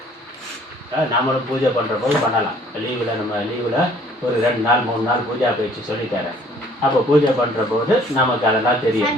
நாமளும் பூஜை பண்ணுற போது பண்ணலாம். லீவில் நம்ம லீவில் ஒரு 2 நாள் 3 நாள் பூஜா பயிற்சி சொல்லித்தரேன். அப்போ பூஜை பண்ணுற போது நமக்கு அதெல்லாம் தெரியும்.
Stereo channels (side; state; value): both; normal; correlation 0.57